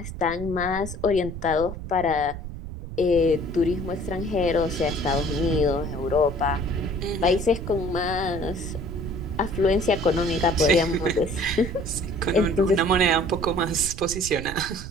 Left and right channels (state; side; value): noise; right; rumble, 9 dB below the sound